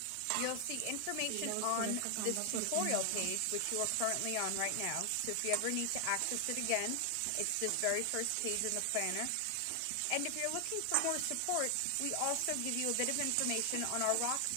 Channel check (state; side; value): different; both; correlation 0.00